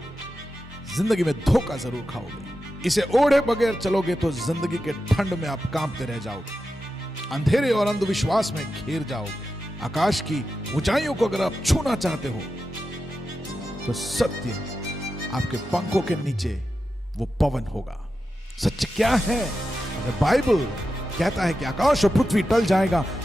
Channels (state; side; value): normal; both; correlation 0.91